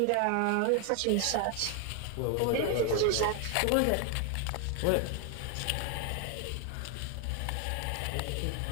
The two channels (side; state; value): both; different; correlation 0.01